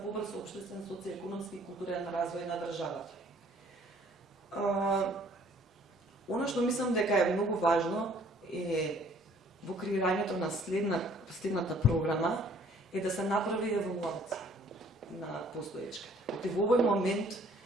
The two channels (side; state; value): both; normal; correlation 0.57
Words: побрз општествен, социјекономски и културен развој на државата. Она што мислам дека е многу важно е во креирањето на следната програма е да се направи евалуација на постоечката. И во овој момент